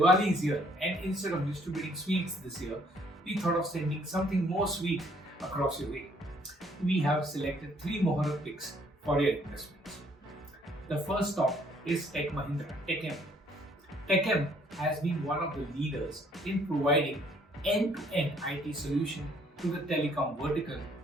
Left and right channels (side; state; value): both; normal; correlation 0.64